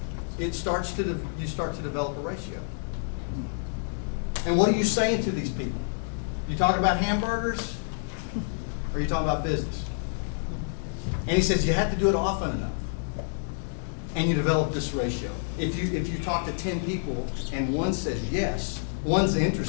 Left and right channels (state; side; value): silent; right; digital silence